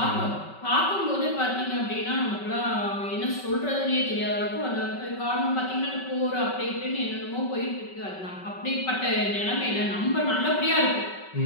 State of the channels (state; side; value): late; right; 5.3 ms